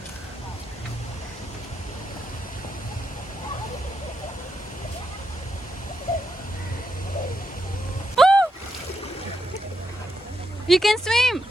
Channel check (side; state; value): both; normal; correlation 0.82